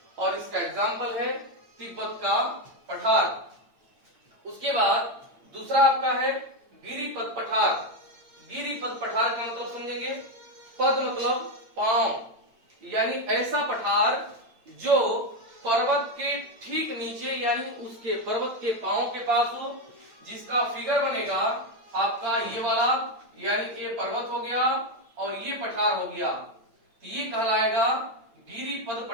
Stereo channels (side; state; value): left; late; 8.9 ms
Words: और इसका एग्जाम्पल है तिब्बत का पठार। उसके बाद दूसरा आपका है गिरिपद पठार। गिरिपद पठार का मतलब समझेंगे, पद मतलब पांव, यानी ऐसा पठार जो पर्वत के ठीक नीचे यानी उसके पर्वत के पांव के पास हो, जिसका फिगर बनेगा आपका ये वाला, यानी ये पर्वत हो गया और ये पठार हो गया, ये कहलाएगा गिरिपद